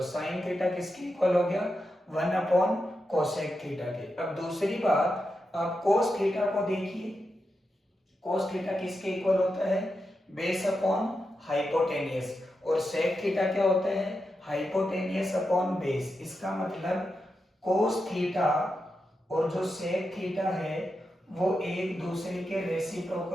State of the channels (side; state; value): both; normal; correlation 0.88